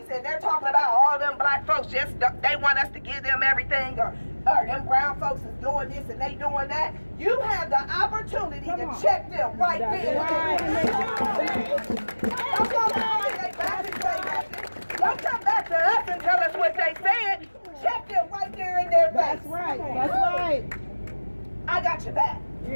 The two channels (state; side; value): inverted; both; correlation -1.00